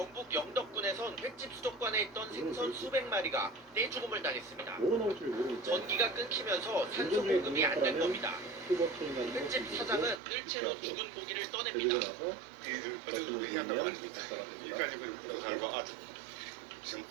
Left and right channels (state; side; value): drops out; left; at 10.2 s